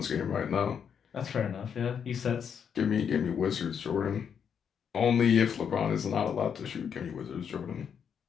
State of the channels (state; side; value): quieter; right; 7.5 dB